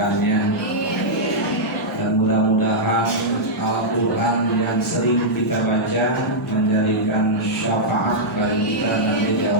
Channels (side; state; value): both; normal; correlation -0.08